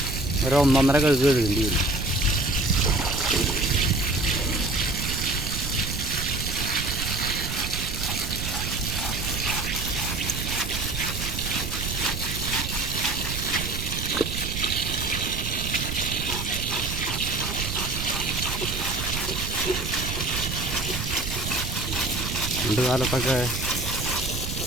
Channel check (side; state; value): right; noise; rumble, 5 dB below the sound